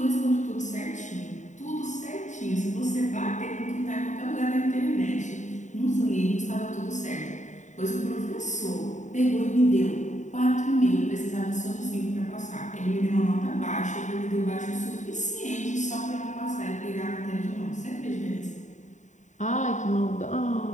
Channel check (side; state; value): right; late; 0.35 ms